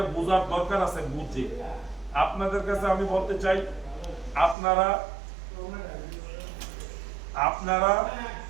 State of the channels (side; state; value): left; drops out; at 4.5 s